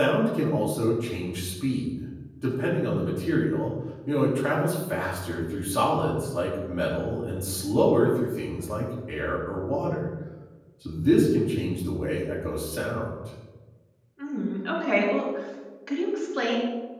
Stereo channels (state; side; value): identical; both; correlation 1.00